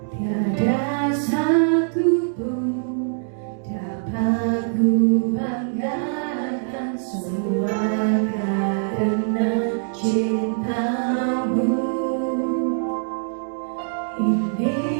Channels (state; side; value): silent; left; digital silence